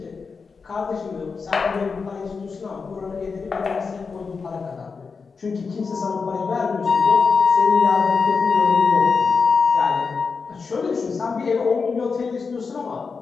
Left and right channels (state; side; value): quieter; right; 5.0 dB